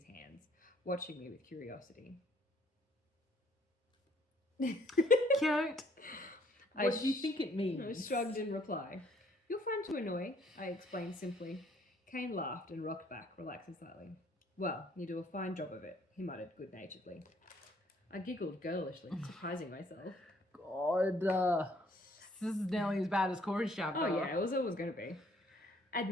hands, watching me with curiosity. Cute. What do you think it means? I shrugged in reply. You're fun to annoy, I explained simply. Kane laughed and rocked back, relaxing slightly. Well, you do a fine job of it, he muttered good-naturedly. I giggled girlishly, surprising myself. God, this is nearly as bad as Corey's chapter. Oh yeah, it was always going to be.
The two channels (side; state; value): both; normal; correlation 0.63